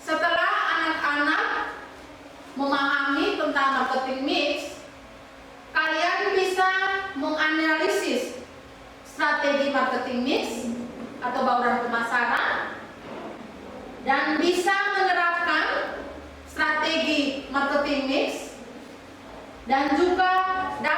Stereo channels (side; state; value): both; identical; correlation 1.00